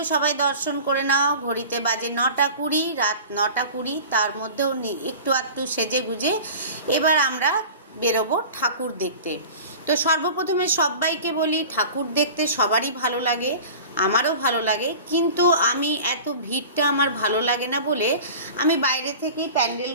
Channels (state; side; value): inverted; both; correlation -0.38